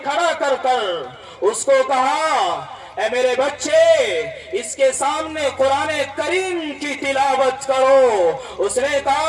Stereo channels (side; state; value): both; identical; correlation 1.00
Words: کھڑا کر اس کو کہا، اے میرے بچے، اس کے سامنے قرآن کریم کی تلاوت کرو۔ اس نے